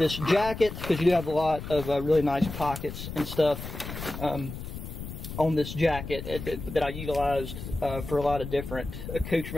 jacket, because you do have a lot of really nice pockets and stuff on this jacket that I utilized for a lot of different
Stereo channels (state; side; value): noise; left; rumble, 9 dB below the sound